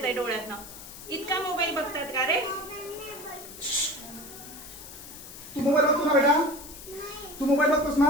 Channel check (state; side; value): noise; left; hiss, 14 dB below the sound